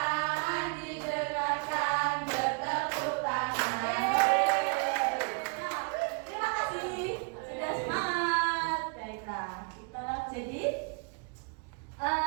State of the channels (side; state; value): left; quieter; 35.7 dB